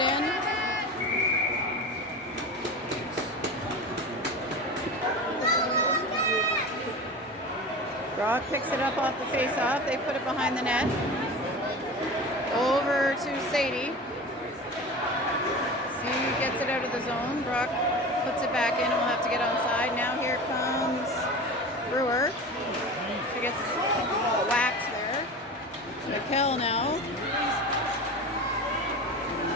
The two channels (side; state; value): both; normal; correlation 0.31